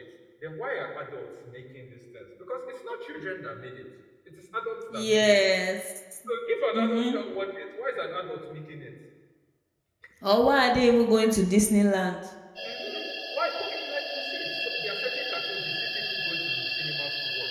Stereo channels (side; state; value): both; identical; correlation 1.00